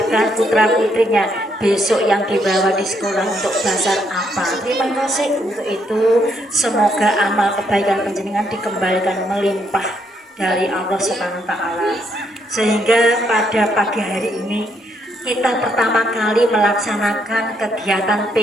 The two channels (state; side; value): normal; both; correlation 0.74